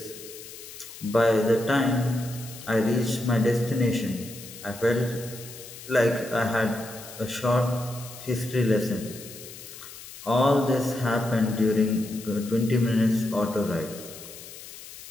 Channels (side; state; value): left; noise; hiss, 15 dB below the sound